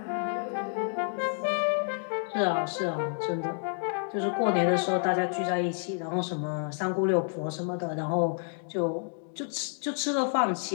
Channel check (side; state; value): right; silent; 58 dB below the other